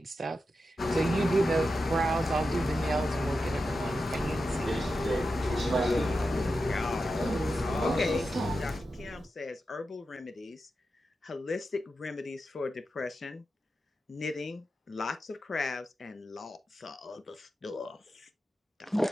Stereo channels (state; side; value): normal; both; correlation 0.90